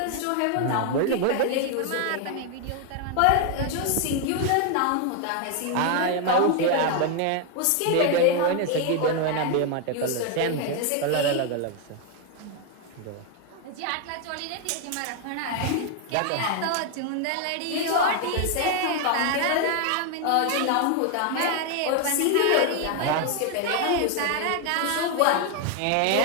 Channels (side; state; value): both; different; correlation 0.01